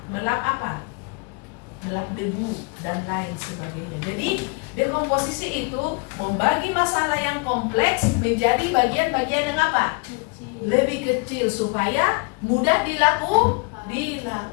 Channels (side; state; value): right; quieter; 33.1 dB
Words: Melap apa? Melap debu dan lain sebagainya. Jadi dekomposisi itu membagi masalah yang kompleks menjadi bagian-bagian yang apa? Lebih kecil supaya mudah dilakukan,